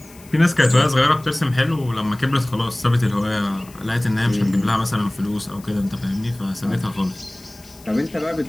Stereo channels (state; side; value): noise; left; hiss, 24 dB below the sound